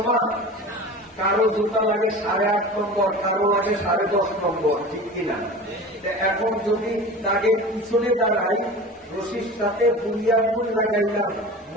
না? কারো জুতা লাগে 8.5 নম্বর, কারো লাগে 10.5 নম্বর, ঠিক কিনা? এখন যদি দাগের পিছনে দাঁড়াই, রশির সাথে বুড়িয়া ফুল লাগাইলাম,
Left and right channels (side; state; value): both; normal; correlation 0.35